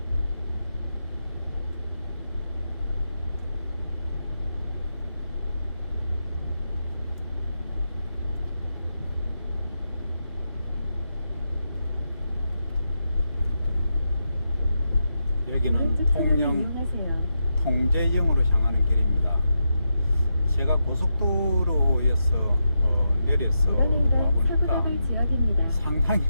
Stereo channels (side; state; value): both; inverted; correlation -0.86